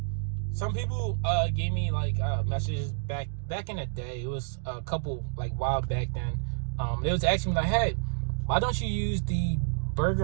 Some people gave me like messages back in the day. It was a couple like while back then. They was asking me like, hey, why don't you use the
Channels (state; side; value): silent; left; digital silence